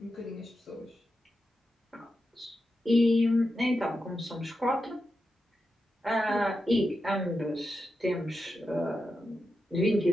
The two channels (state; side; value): normal; both; correlation 0.89